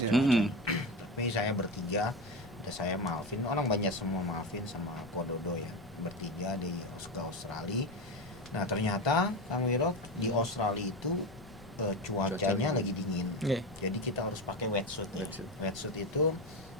Tapi saya bertiga, ada saya Malvin, orang banyak semua Malvin sama Kododo ya, bertiga di Australia. Nah ternyata Kang Wiro di Australia itu cuacanya lagi dingin. Jadi kita harus pakai wetsuit. Wetsuit itu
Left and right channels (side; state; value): left; noise; rumble, 20 dB below the sound